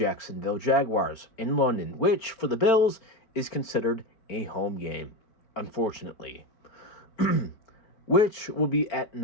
Jaguars in London, which for the Bills is considered a home game, unfortunately, which will be at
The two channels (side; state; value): right; late; 4.4 ms